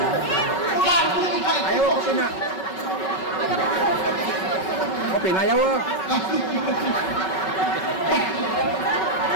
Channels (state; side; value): late; right; 5.3 ms